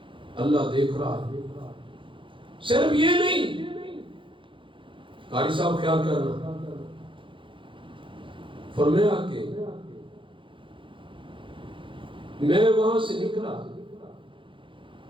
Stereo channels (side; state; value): left; late; 0.25 ms